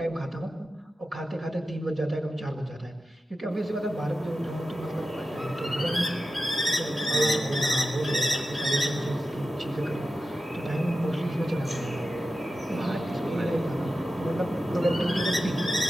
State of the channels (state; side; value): normal; both; correlation 0.92